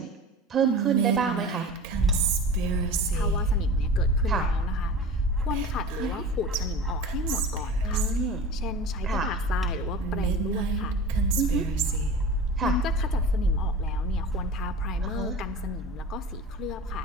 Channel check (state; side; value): normal; both; correlation 0.35